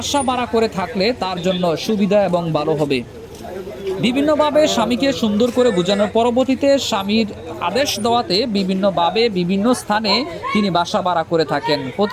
ভাড়া করে থাকলে তার জন্য সুবিধা এবং ভালো হবে। বিভিন্নভাবে স্বামীকে সুন্দর করে বোঝানোর পরবর্তীতে স্বামীর আদেশ দেওয়াতে বিভিন্নভাবে বিভিন্ন স্থানে তিনি বাসা ভাড়া করে থাকেন।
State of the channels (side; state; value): both; identical; correlation 1.00